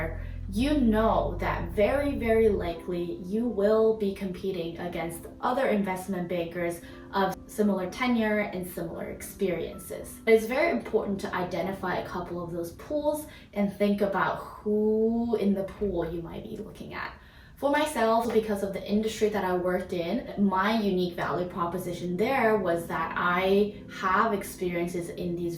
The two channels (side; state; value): both; identical; correlation 1.00